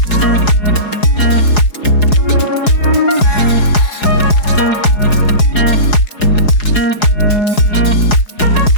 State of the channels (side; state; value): right; late; 4.8 ms